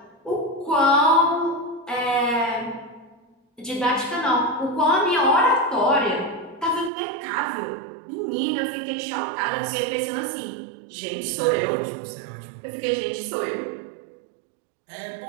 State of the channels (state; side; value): drops out; left; at 6.9 s